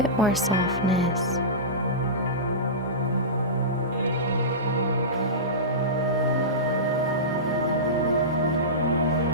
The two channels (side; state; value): both; normal; correlation -0.19